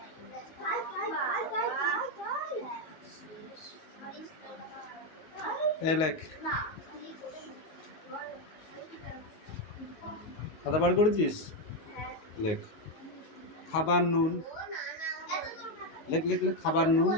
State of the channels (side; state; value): right; late; 19 ms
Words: এই লেখ, খাতা বার করেছিস? লেখ খাবার নুন। লেখ লেখ লেখ, খাবার নুন।